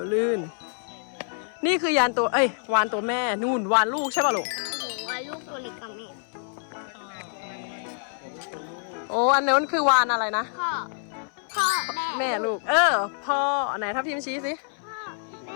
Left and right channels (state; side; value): silent; right; 58 dB below the other